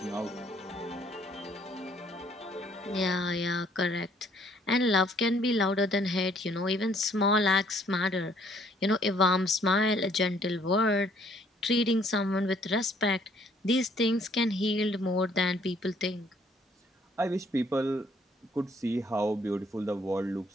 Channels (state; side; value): normal; both; correlation 0.63